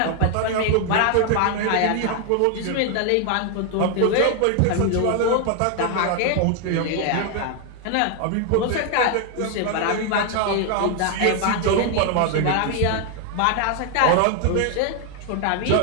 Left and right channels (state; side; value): different; both; correlation 0.00